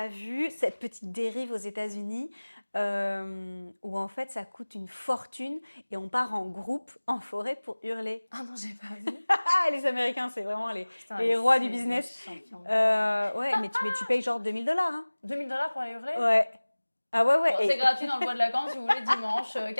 vu cette petite dérive aux États-Unis où en fait ça coûte une fortune et on part en groupe en forêt pour hurler? Ah non, j'ai pas vu. Les Américains, c'est vraiment les rois du business. Ouais, mais tu payes genre $2000. Hein. $2000 pour aller hurler? Ouais. Ah ouais. Bon, c'est gratuit dans le bois de Lacan si vous voulez, dimanche,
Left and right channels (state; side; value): inverted; both; correlation -1.00